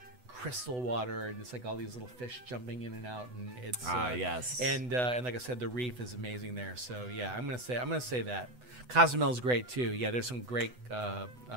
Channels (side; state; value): left; late; 8.0 ms